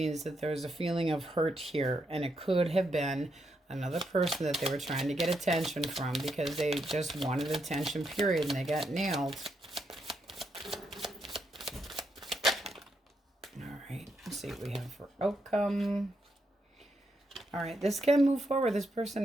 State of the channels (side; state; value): both; normal; correlation 0.80